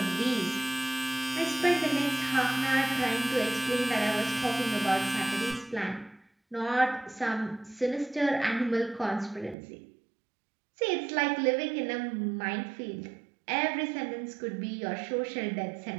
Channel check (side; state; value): left; drops out; at 9.6 s